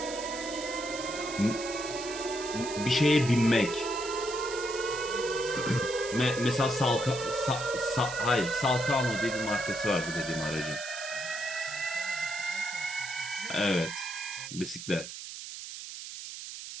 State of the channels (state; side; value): noise; right; hiss, 9 dB below the sound